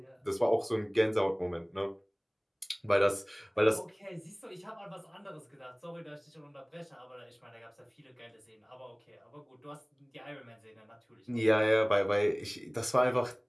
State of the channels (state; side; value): identical; both; correlation 1.00